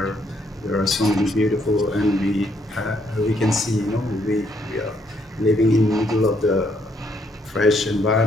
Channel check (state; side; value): normal; both; correlation 0.71